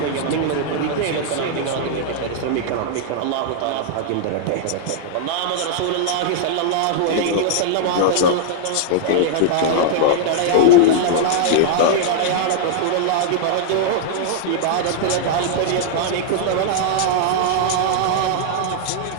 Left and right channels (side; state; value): both; different; correlation -0.01